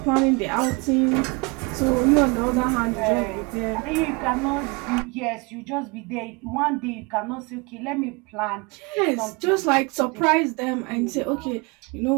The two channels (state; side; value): quieter; left; 28.7 dB